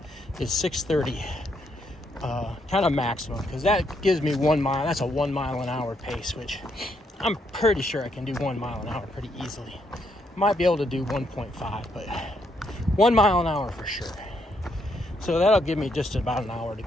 is 6:30, kind of maximum, because that gives me 1 mile. That's a 1 mile an hour pace, which I'm pretty sure I can do 1 mile an hour pretty easily. Might be able to do 1.5, but 1 mile an hour for sure. So that'll give me just about an hour to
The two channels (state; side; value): normal; both; correlation 0.75